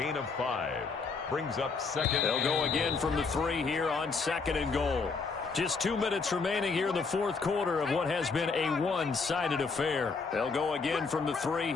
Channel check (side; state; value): right; quieter; 4.6 dB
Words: of 5. Brings up second. They'll go again from the 3 here on second and goal. Just 2 minutes remaining here in the fourth quarter of what has been a one-sided affair. They'll go again from the 3